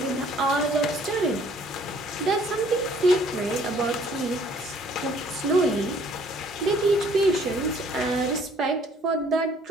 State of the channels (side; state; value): both; normal; correlation 0.59